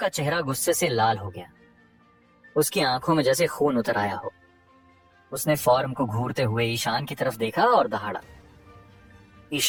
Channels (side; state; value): both; identical; correlation 1.00